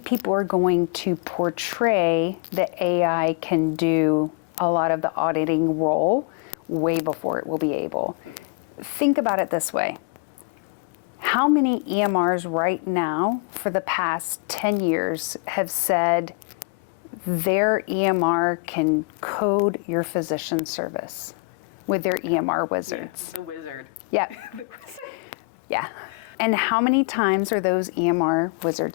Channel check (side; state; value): right; quieter; 32.1 dB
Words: people are going to portray that AI can do a lot of the auditing role way before it will be able. Think about it this way. How many EMRs right now for the past 10 years have said their EMR can code your physician service with their EMR wizards? Yeah, the wizard. Yeah. The wizard. Yeah. And how many times are those EMR